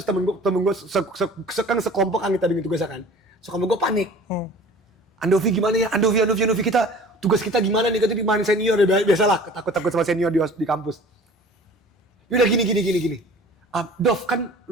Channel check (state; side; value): normal; both; correlation 0.45